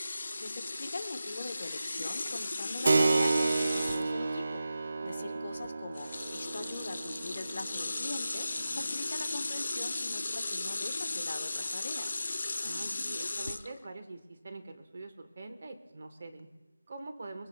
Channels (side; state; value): both; inverted; correlation -0.92